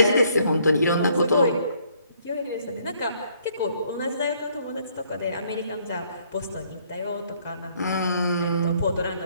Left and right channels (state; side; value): inverted; both; correlation -0.66